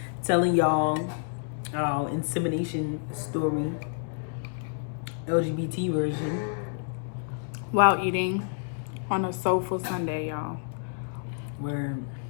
telling y'all our insemination story, LGBT version. While eating on a soulful Sunday, y'all. Where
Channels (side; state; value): right; silent; 59 dB below the other